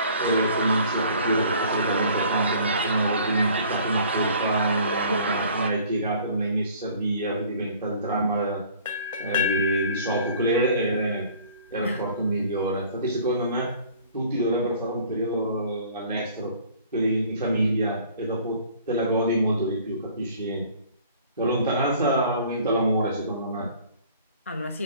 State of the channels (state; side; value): inverted; both; correlation -0.52